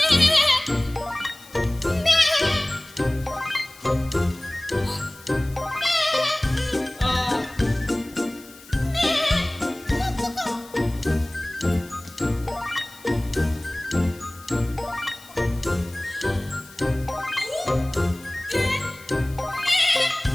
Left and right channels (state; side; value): noise; left; hiss, 22 dB below the sound